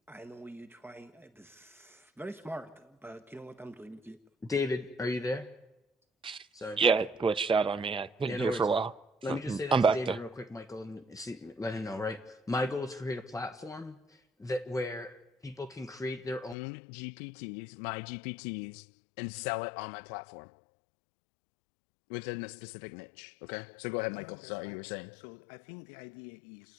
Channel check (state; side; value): drops out; right; at 16.6 s